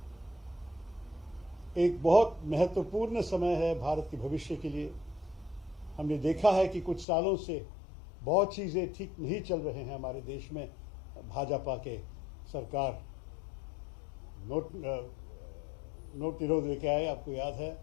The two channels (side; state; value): right; drops out; at 7.1 s